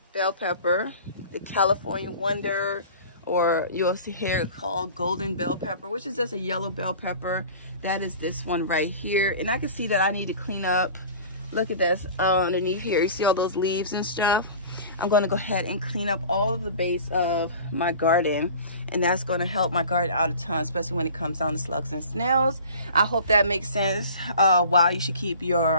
bell pepper, the California Wonder, or you'll see here called golden bell pepper, which is just a yellow bell pepper. That is this one right here. And I can see that I need to clean up. Look at this underneath here. You see all those leaves and stuff? I'm going to go ahead and clean up all of the base of my garden, and that's going to help my garden out a ton, especially when it comes down to slugs and snails. I hope that makes sense. Why you should keep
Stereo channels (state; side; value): inverted; both; correlation -0.41